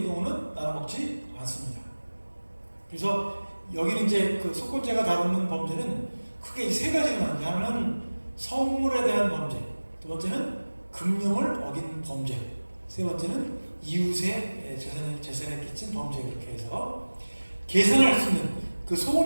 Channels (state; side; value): inverted; both; correlation -1.00